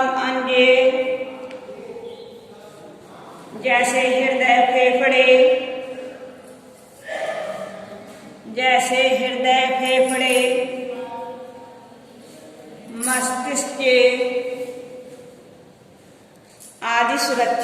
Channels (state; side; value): identical; both; correlation 1.00